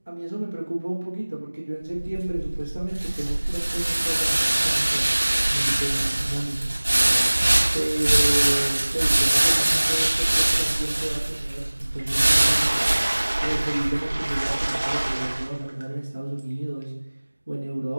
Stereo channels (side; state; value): both; inverted; correlation -1.00